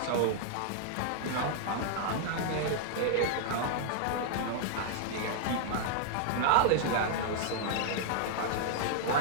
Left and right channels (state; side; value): different; both; correlation -0.01